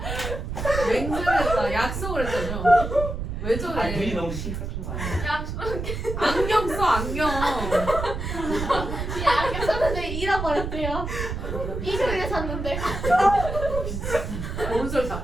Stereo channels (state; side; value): noise; right; rumble, 5 dB below the sound